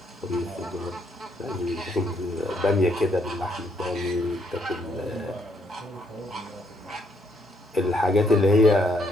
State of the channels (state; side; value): normal; both; correlation 0.72